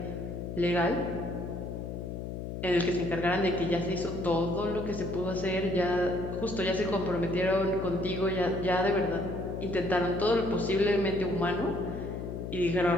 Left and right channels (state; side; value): noise; left; hum, 6 dB below the sound